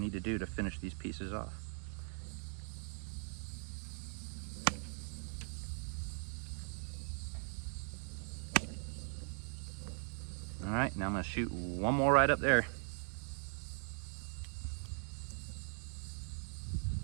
to do to finish these pieces off. All right, now I'm gonna shoot one more right up there.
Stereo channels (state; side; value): silent; left; 51 dB below the other